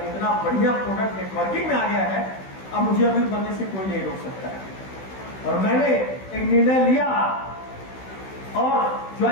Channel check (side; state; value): right; late; 16 ms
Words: इतना बढ़िया प्रोडक्ट नेटवर्किंग में आ गया है, अब मुझे अमीर बनने से कोई नहीं रोक सकता है। और मैंने एक निर्णय लिया और